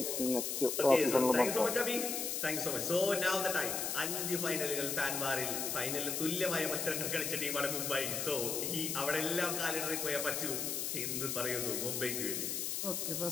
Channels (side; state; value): left; noise; hiss, 1 dB below the sound